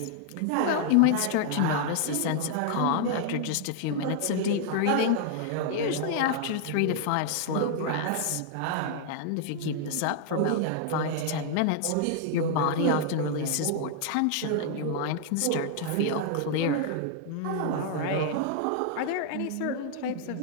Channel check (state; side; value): different; both; correlation -0.01